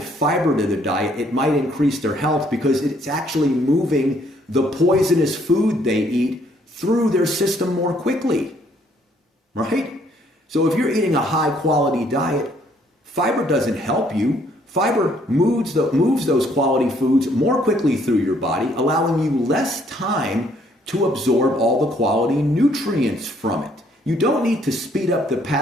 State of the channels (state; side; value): normal; both; correlation 0.66